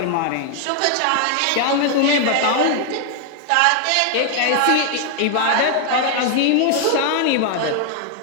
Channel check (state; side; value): different; both; correlation 0.00